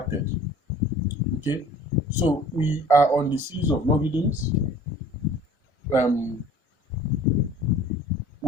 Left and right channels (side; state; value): both; normal; correlation 0.49